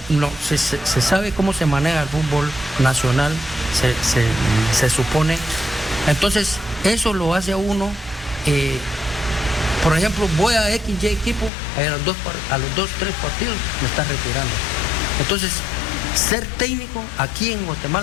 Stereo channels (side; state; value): right; drops out; at 11.5 s